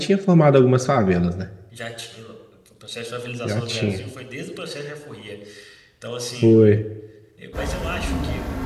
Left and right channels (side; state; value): both; identical; correlation 1.00